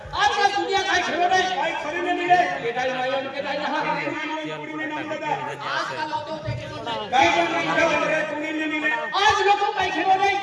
आज का दुनिया का खेलो नहीं भाई खरी नहीं मिले के दाई माई उनके दाई यहाँ पूरी में नाम दादा आज का लोगों के खेलो नहीं काय रे पूरी नहीं मिले आज लोगों का खेलो नहीं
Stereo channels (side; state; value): both; identical; correlation 1.00